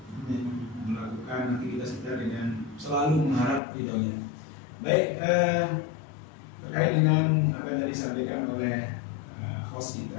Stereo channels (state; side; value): drops out; right; at 3.6 s